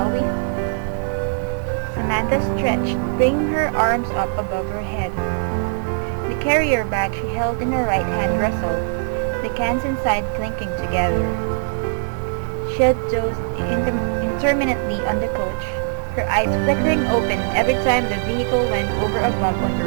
we? Samantha stretched, bringing her arms up above her head. The carrier bag she held in her right hand rustled, the cans inside clinking together. She had dozed intermittently on the coach, her eyes flickering open every time the vehicle went over a bump on the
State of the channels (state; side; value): silent; left; digital silence